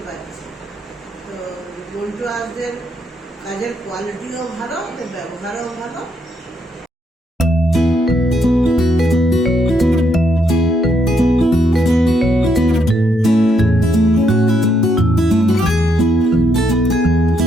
পারছি। তো মন্টু আসদের কাজের কোয়ালিটিও ভালো, ওদের ব্যবহারও ভালো।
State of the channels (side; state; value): both; normal; correlation 0.75